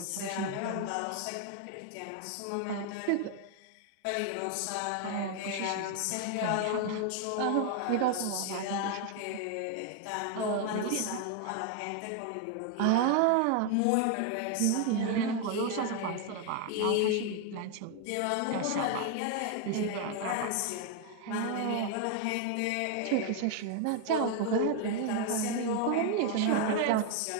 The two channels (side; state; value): both; different; correlation 0.01